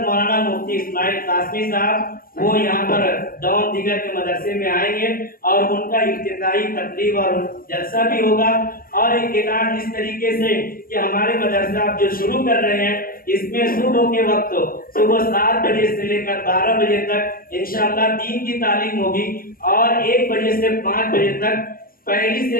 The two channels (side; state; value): right; late; 0.42 ms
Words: مولانا مفتی اسماعیل قاسمی صاحب وہ یہاں پر ڈاؤن دیگر کے مدرسے میں آئیں گے اور ان کا افتتاحی تقریب اور جلسہ بھی ہوگا۔ اور ایک اعلان اس طریقے سے کہ ہمارے مدرسہ آپ جو شروع کر رہے ہیں اس میں صبح کے وقت صبح 7 بجے سے لے کر 12 بجے تک انشاءاللہ دین کی تعلیم ہوگی اور 1 بجے سے 5 بجے تک پہلی